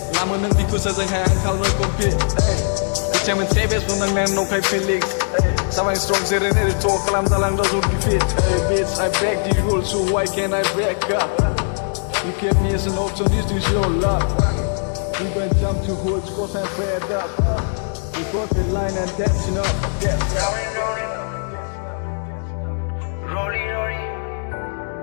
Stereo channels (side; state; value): right; silent; digital silence